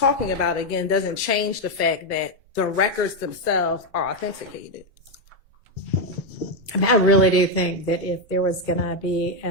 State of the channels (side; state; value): both; normal; correlation 0.03